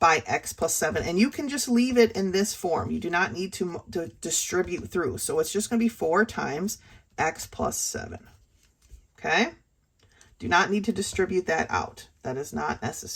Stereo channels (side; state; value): both; identical; correlation 1.00